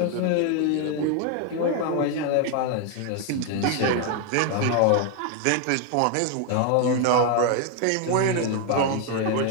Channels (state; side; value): different; both; correlation 0.01